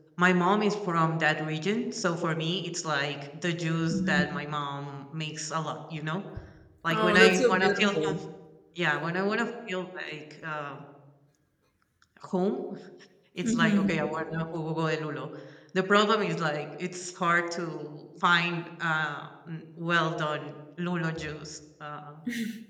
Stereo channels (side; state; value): both; identical; correlation 1.00